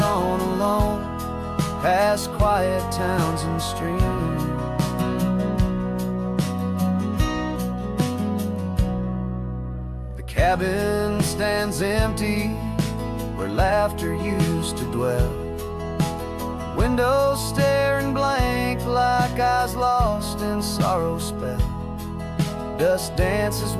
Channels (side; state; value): both; identical; correlation 1.00